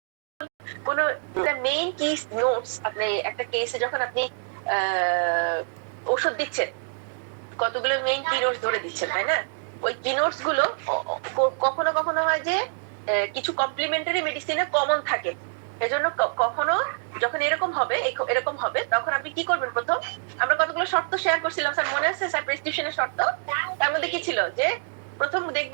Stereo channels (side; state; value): left; silent; 61 dB below the other